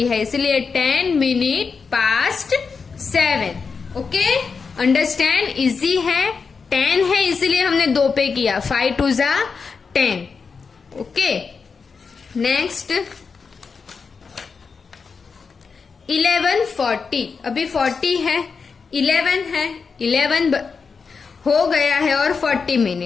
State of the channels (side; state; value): right; quieter; 5.2 dB